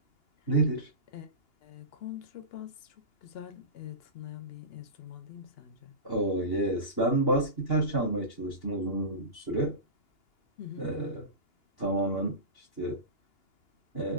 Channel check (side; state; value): right; late; 2.9 ms